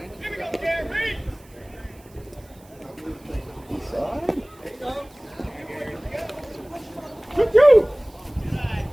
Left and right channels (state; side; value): noise; right; hiss, 28 dB below the sound